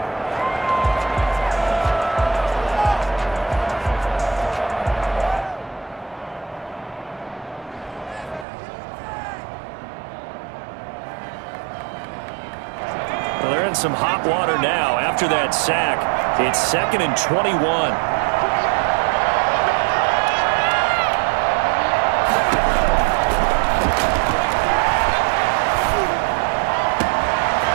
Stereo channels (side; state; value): left; drops out; at 8.5 s